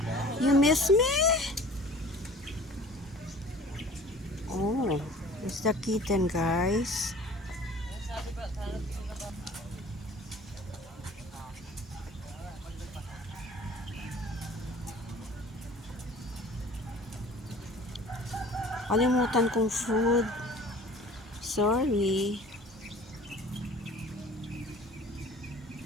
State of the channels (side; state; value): both; normal; correlation 0.46